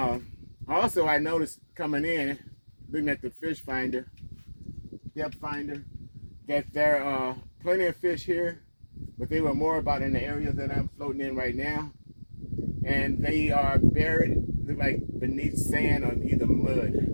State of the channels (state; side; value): inverted; both; correlation -1.00